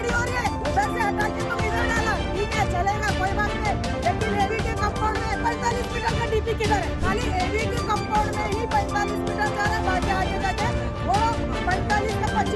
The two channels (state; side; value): identical; both; correlation 1.00